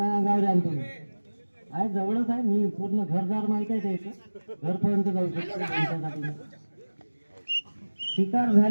अंगावर आण तुम्ही. आहे जवळच आहे, मी पूर्ण घरदार माहित आहे त्याचं, घरपर्यंत जाऊ शकतो त्यांच्यासाठी. शिकार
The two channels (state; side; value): inverted; both; correlation -1.00